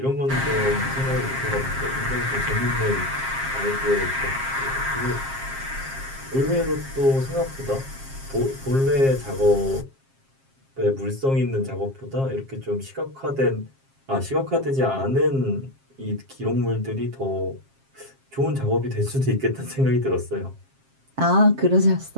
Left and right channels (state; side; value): late; left; 7.5 ms